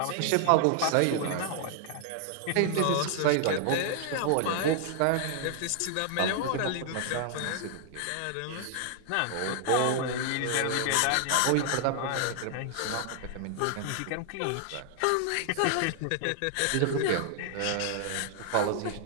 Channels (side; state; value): both; different; correlation 0.00